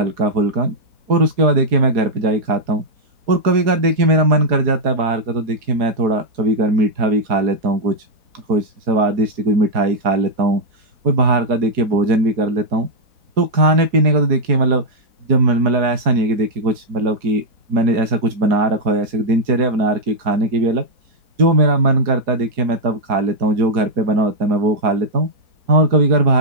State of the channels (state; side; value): late; left; 4.7 ms